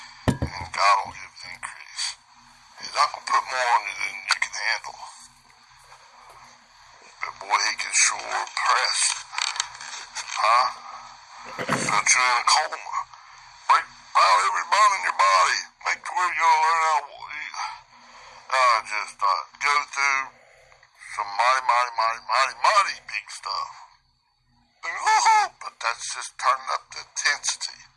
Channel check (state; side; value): identical; both; correlation 1.00